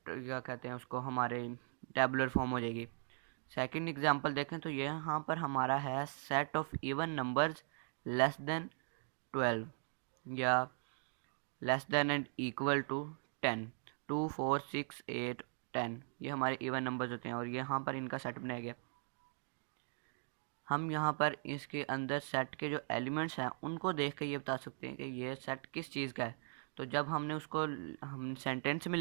क्या कहते हैं उसको, हमारे टेबुलर फॉर्म हो जाएगी। सेकंड एग्जांपल देखें तो ये यहाँ पर हमारा है set of even numbers less than 12 या less than and equal to 10, 2 4 6 8 10, ये हमारे इवन नंबर्स होते हैं और ये यहाँ पर इनका सेट बनाया गया। हम यहाँ पर इसके अंदर सेट के जो एलिमेंट्स हैं उनको देख के ये बता सकते हैं कि ये सेट किस चीज़ का है। तो जब हमने उसको हम सेंटेंस में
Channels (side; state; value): left; silent; 51 dB below the other